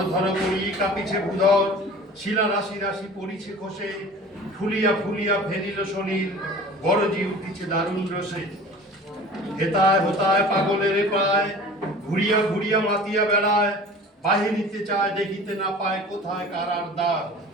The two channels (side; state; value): both; normal; correlation 0.42